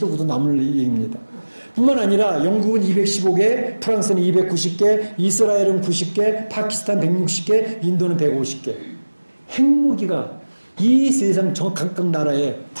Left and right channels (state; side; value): inverted; both; correlation -1.00